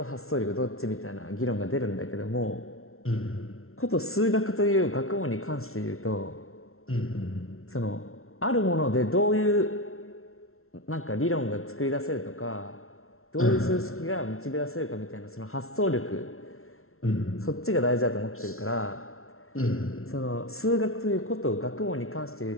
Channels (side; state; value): right; late; 0.62 ms